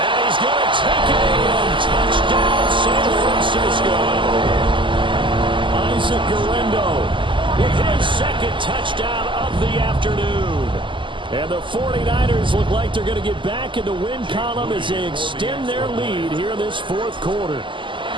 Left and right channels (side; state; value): left; late; 0.24 ms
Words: he's going to take it in. Touchdown, San Francisco. Isaac Guerrero with his second touchdown of the afternoon. And the 49ers look like they're going to get back in the win column as they extend their lead here in this fourth quarter.